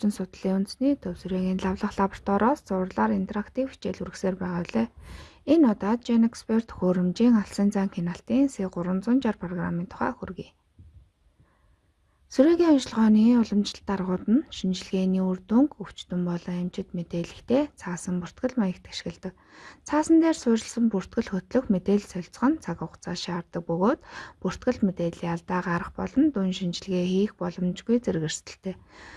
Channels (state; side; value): identical; both; correlation 1.00